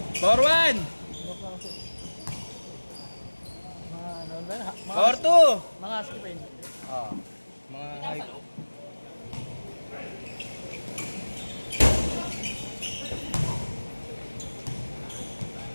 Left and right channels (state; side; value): inverted; both; correlation -1.00